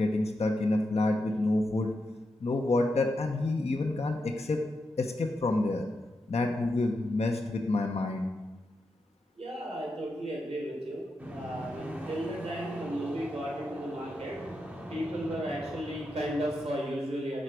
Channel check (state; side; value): normal; both; correlation 0.86